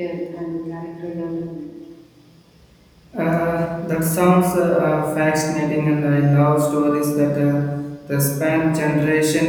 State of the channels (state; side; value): identical; both; correlation 1.00